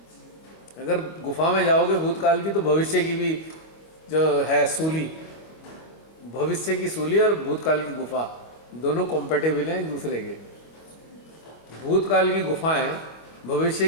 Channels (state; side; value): late; right; 25 ms